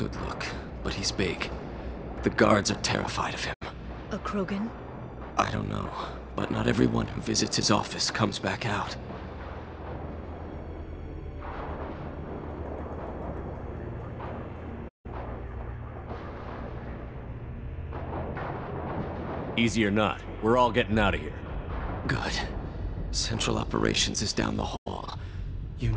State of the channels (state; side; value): identical; both; correlation 1.00